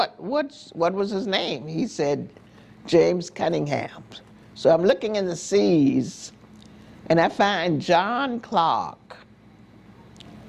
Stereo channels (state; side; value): identical; both; correlation 1.00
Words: was his name? He said, James Cunningham. So I'm looking in the C's, and I find John Clark.